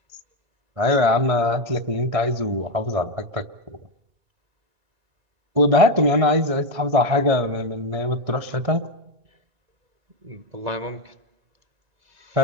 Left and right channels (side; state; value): left; late; 1.6 ms